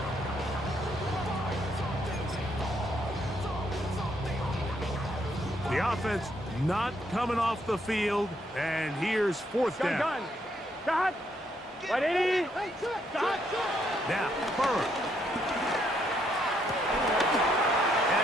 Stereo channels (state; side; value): normal; both; correlation 0.73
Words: The offense not coming off the field, and here's fourth down. Gun. Dot. 180. Dot. Now, Burrow.